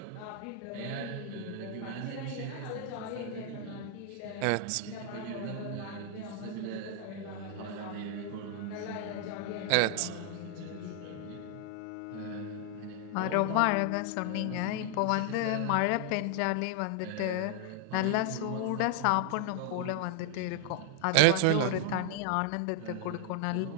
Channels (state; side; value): different; both; correlation 0.00